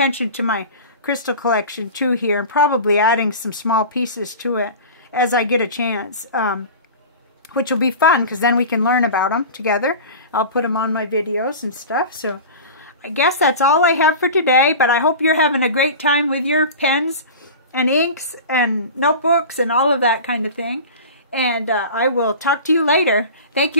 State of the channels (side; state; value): both; inverted; correlation -0.34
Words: to my crystal collection too here, and probably adding some small pieces to it as I get a chance. which will be fun because then we can learn about them together. I'll put them on my videos and stuff. So I guess that's all I have for today, but I hope you're having a great time with your pens and inks and notebooks and all of that kind of thing. And I will talk to you later. Thank